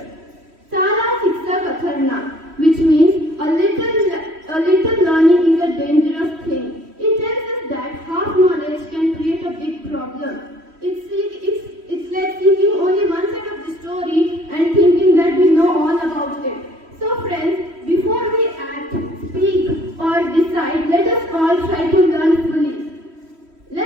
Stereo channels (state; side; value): late; left; 3.1 ms